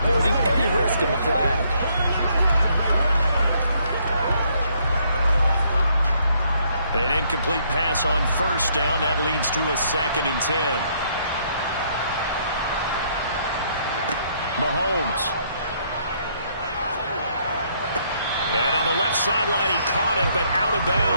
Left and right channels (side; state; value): both; inverted; correlation -0.69